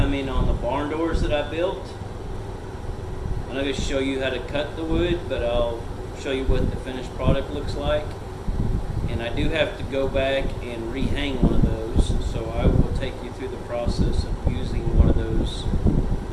on the barn doors that I built. I'm not going to show you how to cut the wood, but I'll show you what the finished product looks like. And I do have to go back and rehang one of those, so I will take you through the process of using one of those. I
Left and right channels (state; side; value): identical; both; correlation 1.00